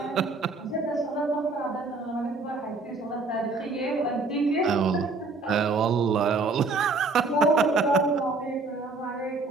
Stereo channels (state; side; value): quieter; left; 3.7 dB